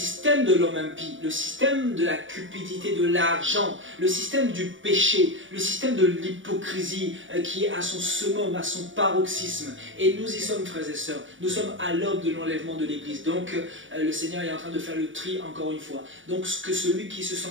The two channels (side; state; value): left; late; 0.56 ms